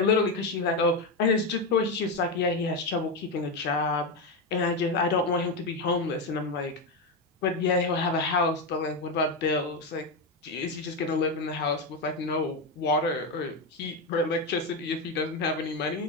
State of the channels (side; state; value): right; quieter; 3.1 dB